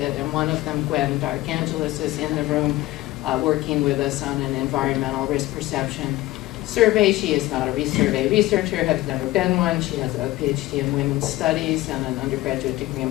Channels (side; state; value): right; quieter; 17.5 dB